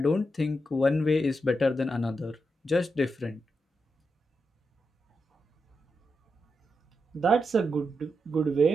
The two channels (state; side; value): normal; both; correlation 0.86